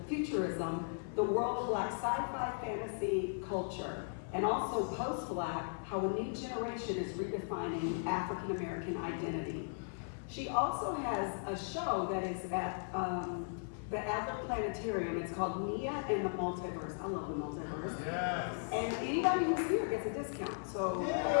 the world of Black sci-fi fantasy culture, and also post-Black, how a new generation is redefining African American identity. She also has a show that is at the Adler Planetarium. It's called Nia and the Multiverse. I love the multiverse. Yes. And anybody who's here gets a discount. So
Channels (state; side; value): silent; right; 53 dB below the other